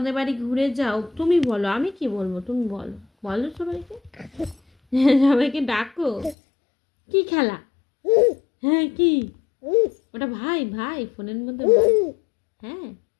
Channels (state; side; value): drops out; right; at 6.4 s